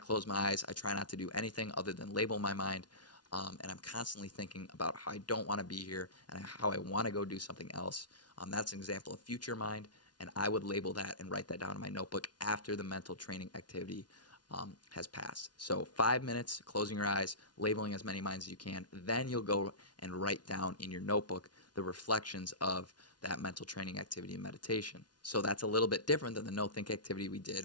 my eyes, I try not to do anything other than label my mind, and I'm constantly thinking about how I don't want to be here and how I want to go do something else. That's an example of future mind, and I would label that and write that down in my notebook after the mental training activity has passed. So 5 minutes, closing your eyes, labeling as many minds as you can. Then you'll go and write down in your notebook the reflections of that mental training activity and meditation. So that's a little bit different than the no-think activity we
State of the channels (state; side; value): late; right; 0.69 ms